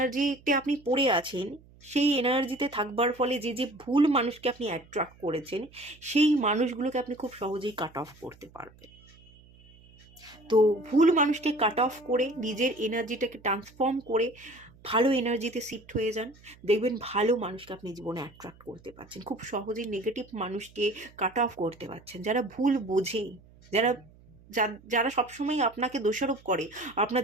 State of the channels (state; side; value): noise; right; hum, 26 dB below the sound